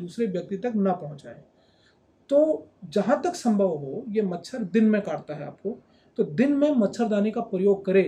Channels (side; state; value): both; identical; correlation 1.00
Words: व्यक्ति तक न पहुंचाए। तो जहाँ तक संभव हो, ये मच्छर दिन में काटता है आपको, तो दिन में मच्छरदानी का प्रयोग